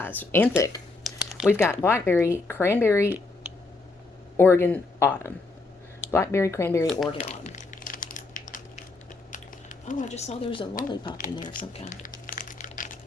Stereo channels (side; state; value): right; quieter; 3.5 dB